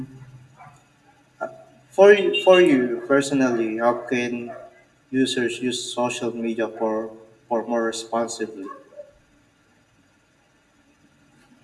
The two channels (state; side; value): identical; both; correlation 1.00